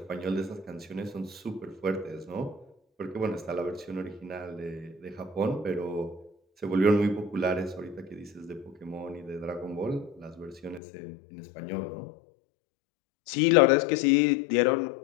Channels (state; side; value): drops out; right; at 10.8 s